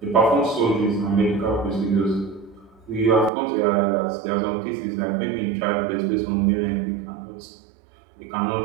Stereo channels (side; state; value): left; drops out; at 3.3 s